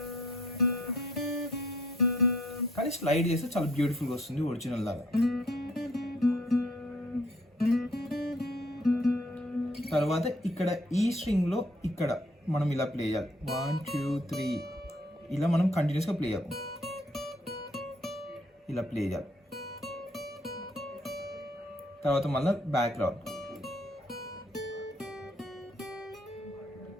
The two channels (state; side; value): normal; both; correlation 0.63